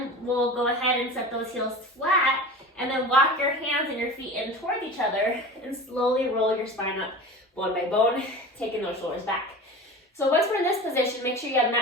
we'll go ahead and set those heels flat, and then walk your hands and your feet in towards each other and slowly roll your spine up bone by bone, taking those shoulders back. So once we're in this position, make sure you have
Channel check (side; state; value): both; normal; correlation 0.34